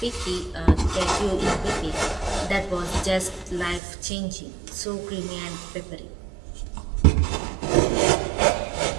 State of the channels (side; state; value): left; drops out; at 3.8 s